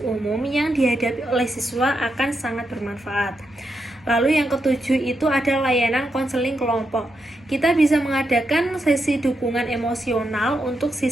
umum yang dihadapi oleh siswa akan sangat bermanfaat. Lalu yang ketujuh itu ada layanan konseling kelompok. Kita bisa mengadakan sesi dukungan emosional untuk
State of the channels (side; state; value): both; normal; correlation 0.84